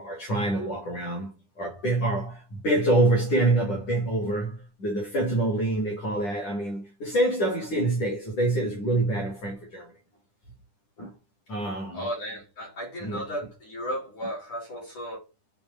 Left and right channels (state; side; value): late; right; 10 ms